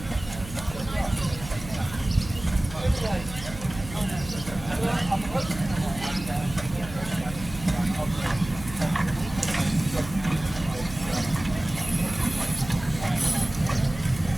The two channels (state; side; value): noise; right; hum, 13 dB below the sound